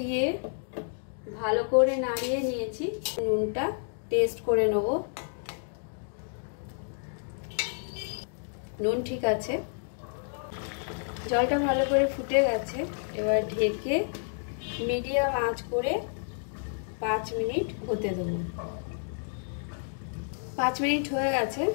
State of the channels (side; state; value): right; silent; digital silence